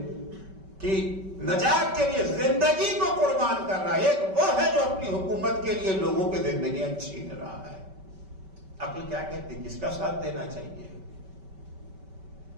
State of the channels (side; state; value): left; late; 5.2 ms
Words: کی نجات کے لیے زندگی کو قربان کر رہا ہے. ایک وہ ہے جو اپنی حکومت کے لیے لوگوں کی زندگیاں چھین رہا ہے. عقل کیا کہتی ہے, کس کا ساتھ دینا چاہیے.